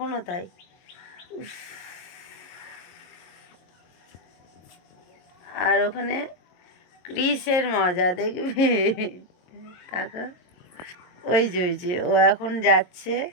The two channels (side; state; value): right; late; 22 ms